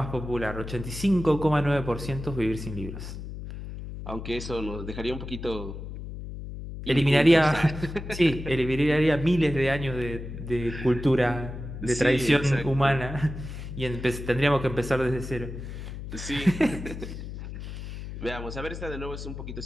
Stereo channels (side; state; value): left; noise; hum, 9 dB below the sound